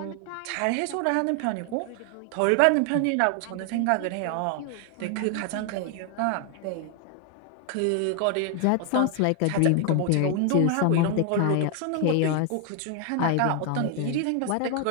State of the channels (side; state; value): both; different; correlation 0.00